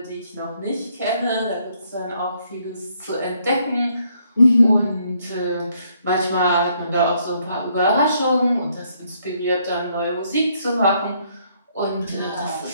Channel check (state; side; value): inverted; both; correlation -0.70